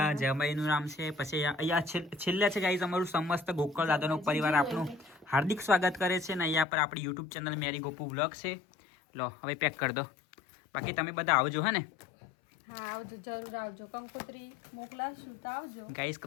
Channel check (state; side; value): drops out; right; at 6.7 s